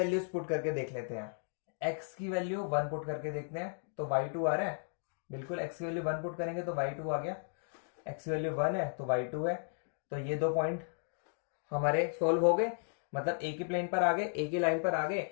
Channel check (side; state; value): right; silent; digital silence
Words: पुट करके देख लेते हैं। x की वैल्यू 1 पुट करके देखते हैं तो y2 आ रहा है, बिल्कुल x की वैल्यू 1 पुट करेंगे तो y2 आ गया, x की वैल्यू 1 है तो y2 है। तो ये 2 पॉइंट हमारे सोल्व हो गए, मतलब एक ही प्लेन पर आ गए, एक ही लाइन पर आ गए।